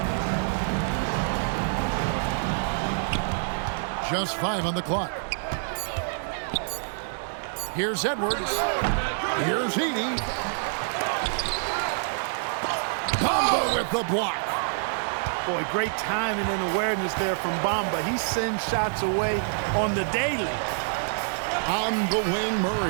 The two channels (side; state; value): left; silent; 57 dB below the other